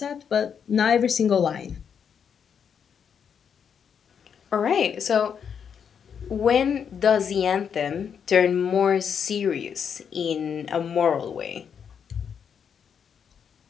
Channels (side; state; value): right; quieter; 7.4 dB